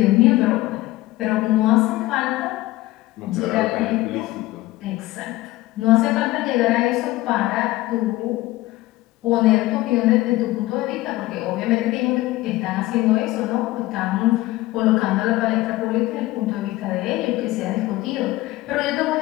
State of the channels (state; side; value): quieter; right; 17.9 dB